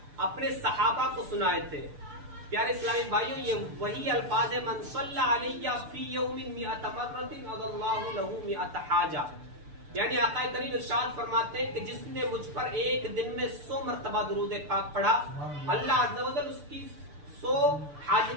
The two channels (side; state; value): left; late; 6.8 ms